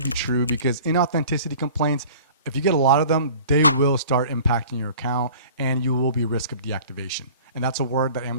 true, because inauthenticity complaints, if you get a lot of them, they will start impacting your account and you will be at risk of deactivation. And that's a word that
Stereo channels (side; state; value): both; inverted; correlation -0.45